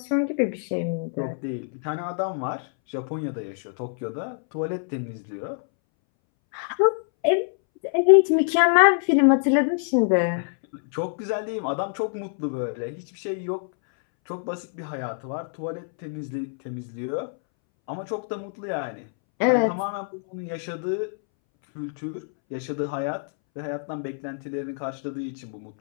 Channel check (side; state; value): right; silent; 61 dB below the other